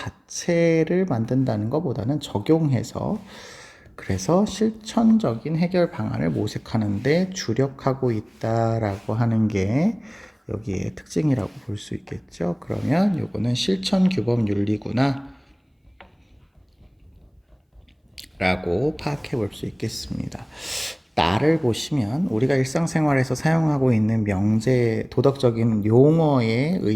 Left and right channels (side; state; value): both; identical; correlation 1.00